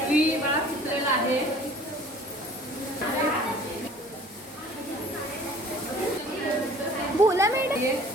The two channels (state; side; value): normal; both; correlation 0.49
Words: मला चित्रलेला आहे. बोला मॅडम.